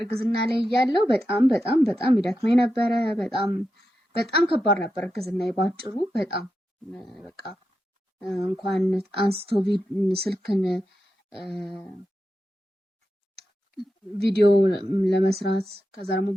ላይ እያለሁ በጣም ይደክመኝ ነበረ። በጣም ከባድ ነበር እርግዝና ባጭሩ። በጣም በቃ እንኳን አንስቶ ስልክን ቪዲዮ ለመስራት ከዛ ደግሞ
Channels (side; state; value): both; normal; correlation 0.88